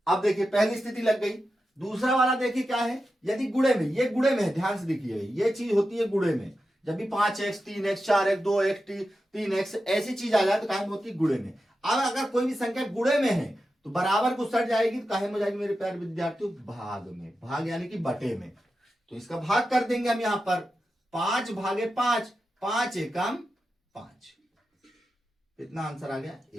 अब देखिए पहली स्थिति लग गई। दूसरा वाला देखिए क्या है, यदि गुणे में, ये गुणे में है, ध्यान से देखिए ये चीज होती है गुणे में, जब भी 5x 3x 4x 2x 3x ऐसी चीज आ जाए तो काहे में होती है, गुणे में। अब अगर कोई भी संख्या गुणे में है तो बराबर को सट जाएगी तो काहे में जाएगी मेरे प्यारे विद्यार्थियों, भाग में, भाग यानी कि बटे में। तो इसका भाग कर देंगे हम यहां पर, 5 भागे 5, 5 एकम 5, कितना आंसर आ गया,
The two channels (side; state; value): both; normal; correlation 0.91